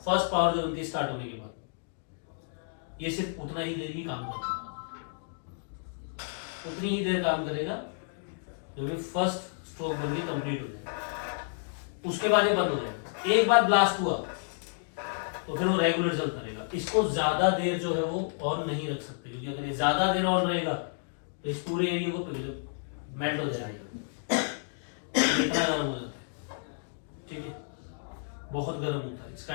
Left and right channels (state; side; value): silent; right; digital silence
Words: फर्स्ट पावर जो बनती है स्टार्ट होने के बाद, ये सिर्फ उतना ही देर ही काम करता है, उतनी ही देर काम करेगा जो भी फर्स्ट स्ट्रोक बन के कंप्लीट हो जाए। उसके बाद ये बंद हो जाएगा। एक बार ब्लास्ट हुआ तो फिर वो रेगुलर चलता रहेगा। इसको ज्यादा देर जो है वो ऑन नहीं रख सकते, क्योंकि अगर ये ज्यादा देर ऑन रहेगा तो इस पूरे एरिया को पिघल मेल्ट हो जाएगा, इतना गर्म हो जाता है, ठीक है, बहुत गर्म होता है।